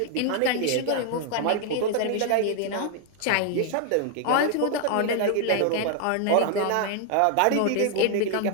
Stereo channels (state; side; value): different; both; correlation 0.00